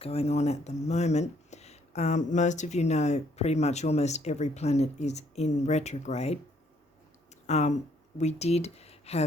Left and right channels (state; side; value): normal; both; correlation 0.67